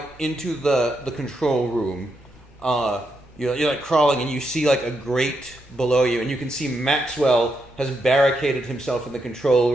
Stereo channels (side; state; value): both; normal; correlation 0.82